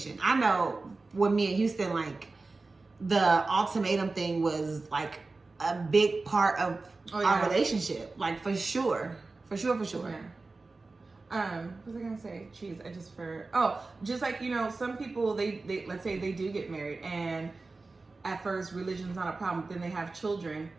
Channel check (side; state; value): left; quieter; 3.6 dB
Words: I know with me and Houston, like the ultimatum thing was like a big part of our relationship. Like for sure. Yeah. What was I gonna say? Jeez, just like, you know, some people they let's say they do get married and at first religion's not a problem, then they have children